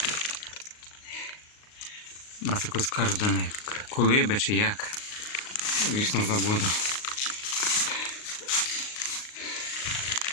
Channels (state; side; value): late; right; 38 ms